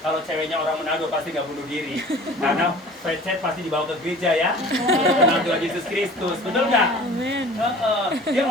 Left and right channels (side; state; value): both; normal; correlation 0.44